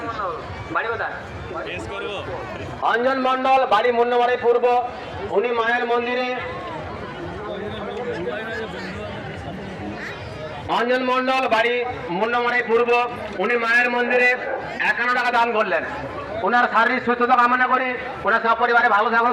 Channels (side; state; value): both; identical; correlation 1.00